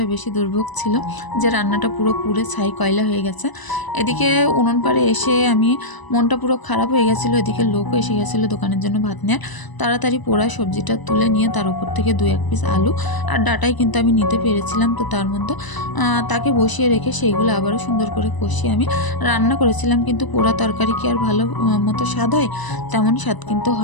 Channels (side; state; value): right; late; 1.0 ms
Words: বেশি দুর্ভোগ ছিল যে রান্নাটা পুরো পুড়ে ছাই কয়লা হয়ে গেছে। এদিকে উনুন পাড়ে এসে আমি মনটা পুরো খারাপ হয়ে গেছিলো। এদিকে লোকও এসে গেছিলো দোকানের জন্য ভাত নেওয়ার। তাড়াতাড়ি পোড়া সবজিটা তুলে নিয়ে তার উপর থেকে 2-1 পিস আলু আর ডাঁটাই কিন্তু আমি নিতে পেরেছিলাম। তো তার মধ্যে তাকে বসিয়ে রেখে সেইগুলো আবারও সুন্দর করে কষিয়ে আমি রান্না করেছিলাম। কিন্তু পোড়া তরকারি কি আর ভালো মতো স্বাদ হয়? তেমন স্বাদ কিন্তু